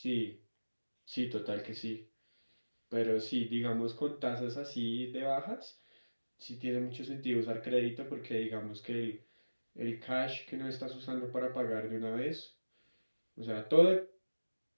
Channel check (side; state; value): both; inverted; correlation -1.00